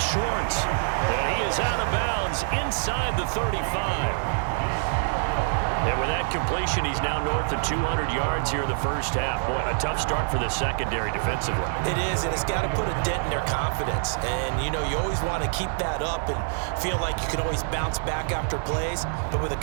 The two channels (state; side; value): silent; left; digital silence